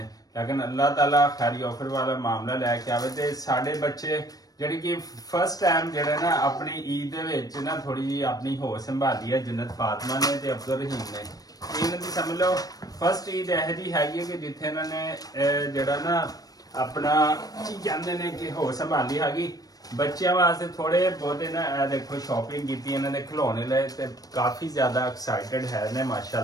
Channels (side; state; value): right; late; 0.18 ms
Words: ਲੇਕਿਨ ਅੱਲਾਹ ਤਾਲਾ ਖੈਰੀ ਆਫਰ ਵਾਲਾ ਮਾਮਲਾ ਲੈ ਕੇ ਆਵੇ। ਤੇ ਸਾਡੇ ਬੱਚੇ ਜਿਹੜੀ ਕਿ ਫਸਟ ਟਾਈਮ ਜਿਹੜੇ ਨਾ ਆਪਣੀ ਈਦ ਦੇ ਵਿੱਚ ਨਾ ਥੋੜੀ ਜਿਹੀ ਆਪਣੀ ਹੋਸ਼ ਸੰਭਾਲੀ ਹੈ ਜੰਨਤ ਫਾਤਮਾ ਨੇ ਤੇ ਅਬਦੁਲ ਰਹੀਮ ਨੇ। ਇਹਨਾਂ ਦੀ ਸਮਝ ਲਓ ਫਸਟ ਈਦ ਇਹੋ ਜਿਹੀ ਹੈਗੀ ਹੈ ਕਿ ਜਿੱਥੇ ਇਹਨਾਂ ਨੇ ਜਿਹੜਾ ਨਾ ਆਪਣਾ ਕੀ ਕਹਿੰਦੇ ਨੇ ਕਿ ਹੋਸ਼ ਸੰਭਾਲੀ ਹੈਗੀ। ਬੱਚਿਆਂ ਵਾਸਤੇ ਥੋੜੇ ਬਹੁਤੇ ਨਾ ਇਹ ਦੇਖੋ ਸ਼ਾਪਿੰਗ ਕੀਤੀ ਇਹਨਾਂ ਨੇ ਖਿਡੌਣੇ ਲਏ ਤੇ ਕਾਫੀ ਜ਼ਿਆਦਾ ਐਕਸਾਈਟਡ ਹੈ ਨੇ